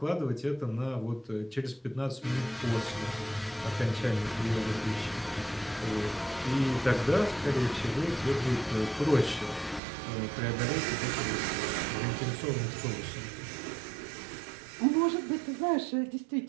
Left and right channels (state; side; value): drops out; left; at 9.8 s